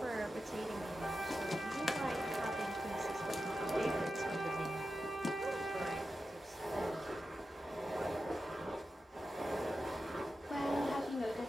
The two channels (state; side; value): normal; both; correlation 0.91